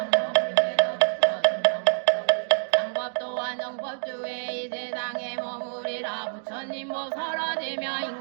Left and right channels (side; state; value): left; silent; digital silence